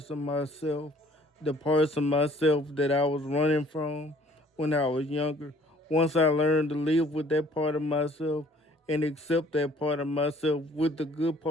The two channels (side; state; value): both; normal; correlation 0.56